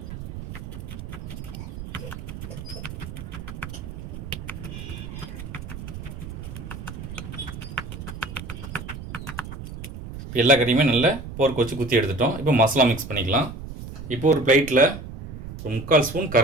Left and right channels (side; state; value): right; noise; rumble, 10 dB below the sound